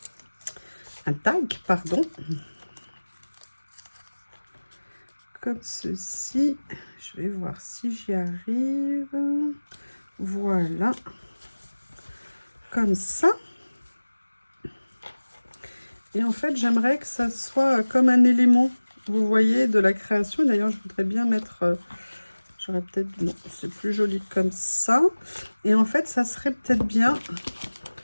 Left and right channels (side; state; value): both; inverted; correlation -1.00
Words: Un tag, pardon. Comme ceci. Je vais voir si j'y arrive. Voilà. Comme ça. Et en fait, j'aimerais que ça soit comme un élément, vous voyez, de la création. D'ailleurs, je voudrais bien mettre... J'aurais peut-être... Non, c'est plus joli comme ça. Et en fait, ça serait peut-être bien...